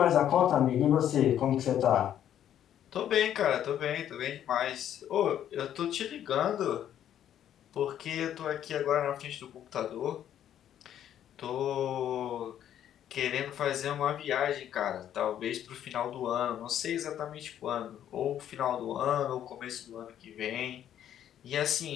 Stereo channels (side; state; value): right; quieter; 10.6 dB